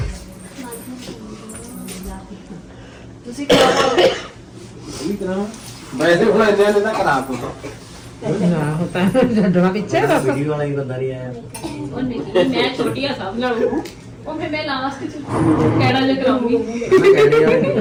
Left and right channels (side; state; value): both; identical; correlation 1.00